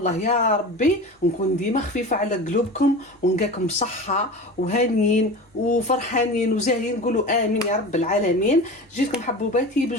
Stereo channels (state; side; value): normal; both; correlation 0.32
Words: يا ربي نكون ديما خفيفه على قلوبكم ونلقاكم بصحه وهانيين وفرحانين وزاهيين. نقولوا امين يا رب العالمين. جيتكم حبوباتي